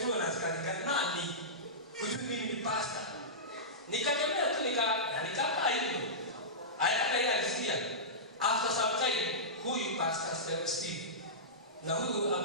na askari nani? Kujua mimi ni pastor. Nikatembea tu nikakaa hivyo. Hata yeye alisikia. After some time, huyu pastor Steve na huyu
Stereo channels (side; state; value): both; normal; correlation -0.17